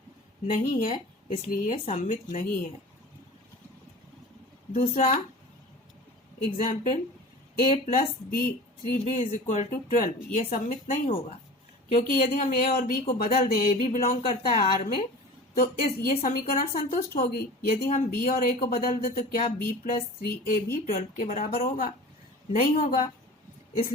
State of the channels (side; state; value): both; normal; correlation 0.38